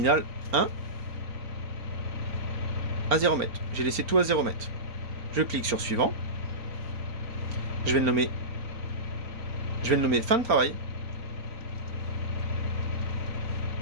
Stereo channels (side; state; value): left; late; 4.3 ms